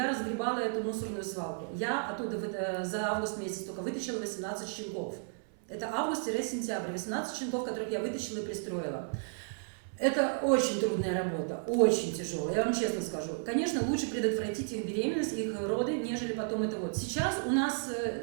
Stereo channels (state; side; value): silent; left; 56 dB below the other